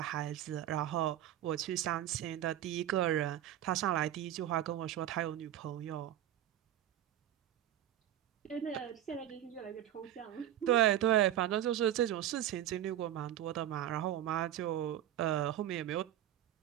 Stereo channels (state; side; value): quieter; left; 12.0 dB